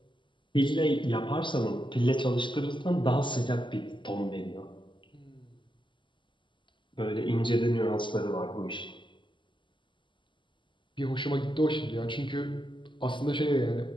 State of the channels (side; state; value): right; late; 0.24 ms